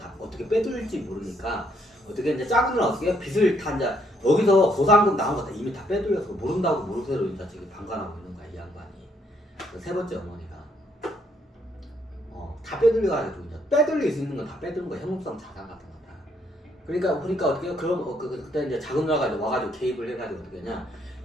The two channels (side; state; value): both; normal; correlation 0.70